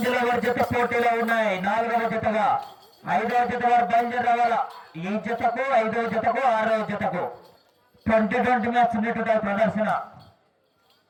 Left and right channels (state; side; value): identical; both; correlation 1.00